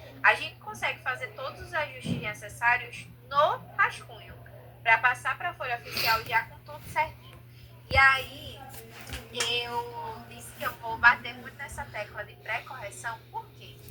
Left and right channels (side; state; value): both; identical; correlation 1.00